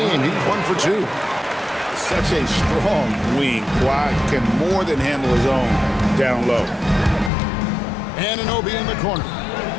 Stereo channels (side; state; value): right; drops out; at 7.3 s